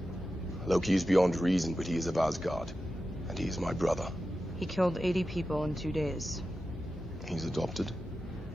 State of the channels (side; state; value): both; normal; correlation 0.92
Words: Loki is beyond reason, but he is of Asgard. And he is my brother. He killed 80 people in 2 days. He's adopted?